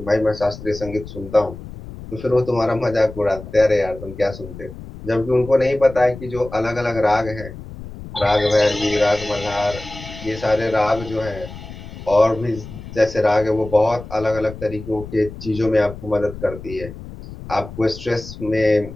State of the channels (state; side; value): noise; left; rumble, 13 dB below the sound